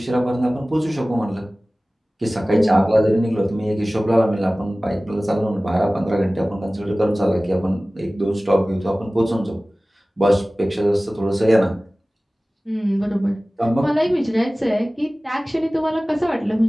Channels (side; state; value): both; normal; correlation 0.98